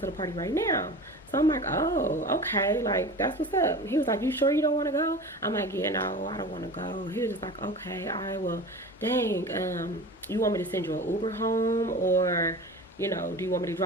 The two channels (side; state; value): both; normal; correlation 0.34